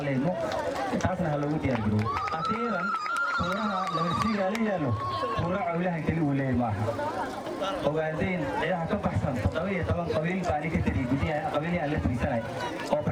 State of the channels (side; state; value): both; identical; correlation 1.00